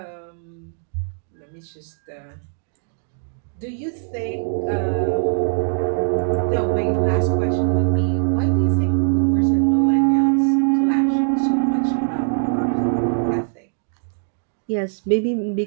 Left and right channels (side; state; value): left; silent; digital silence